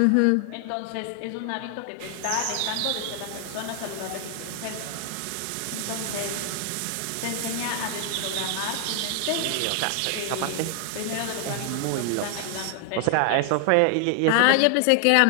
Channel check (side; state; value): both; different; correlation 0.00